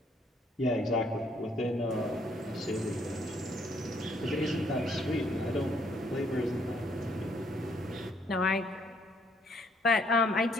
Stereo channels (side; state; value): both; normal; correlation 0.67